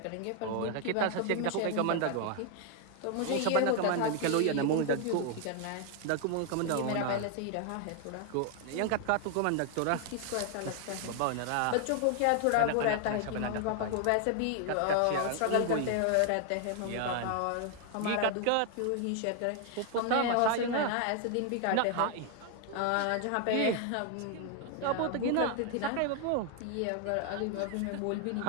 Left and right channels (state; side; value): different; both; correlation 0.00